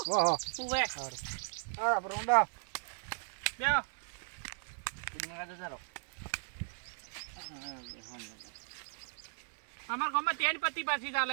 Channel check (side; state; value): left; silent; 53 dB below the other